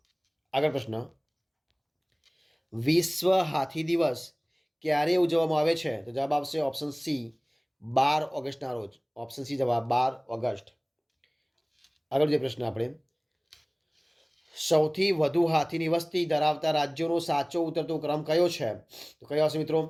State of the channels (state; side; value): identical; both; correlation 1.00